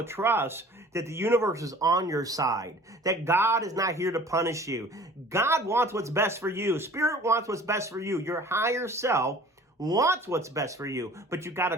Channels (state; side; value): normal; both; correlation 0.47